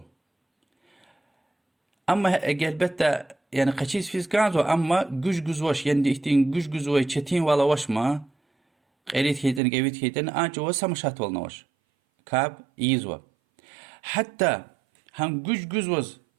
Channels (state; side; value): drops out; left; at 9.6 s